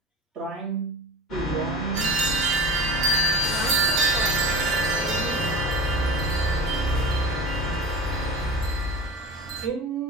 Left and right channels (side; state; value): both; normal; correlation 0.33